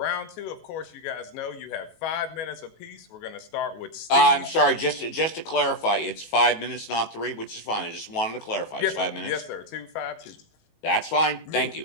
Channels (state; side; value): late; right; 19 ms